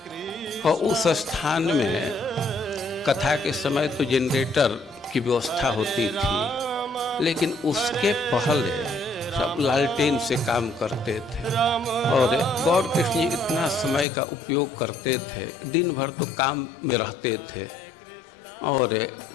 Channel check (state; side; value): drops out; right; at 14.1 s